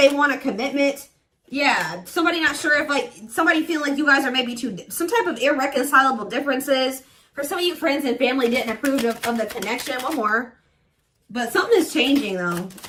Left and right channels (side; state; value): both; identical; correlation 1.00